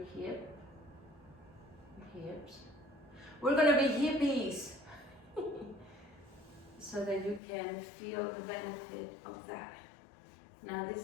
hips. We're gonna be hippies, so that you can feel the benefit of that. Now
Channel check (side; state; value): right; drops out; at 7.4 s